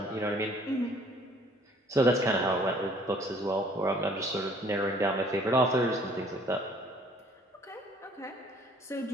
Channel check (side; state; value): both; normal; correlation 0.57